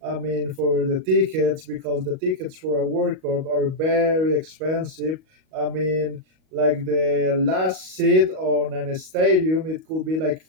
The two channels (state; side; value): late; left; 38 ms